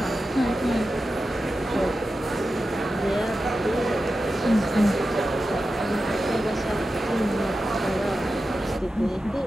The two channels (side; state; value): both; normal; correlation 0.92